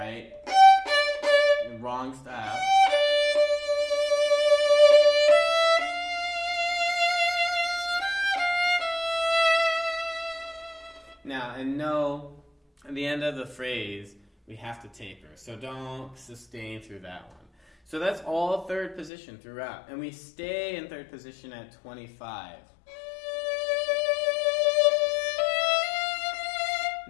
Wrong style. Now, and no, at the end of the phrase, we have to taper. So don't sustain through that one. So that's all 3rd position throughout. And we stay in 3rd position at 25.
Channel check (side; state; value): right; drops out; at 19.1 s